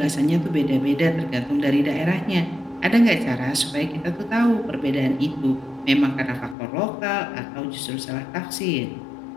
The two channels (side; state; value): right; drops out; at 6.6 s